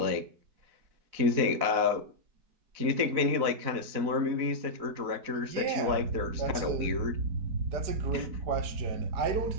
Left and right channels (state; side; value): late; left; 4.0 ms